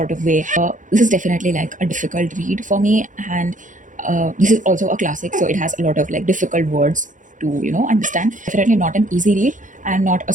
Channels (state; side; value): late; left; 0.37 ms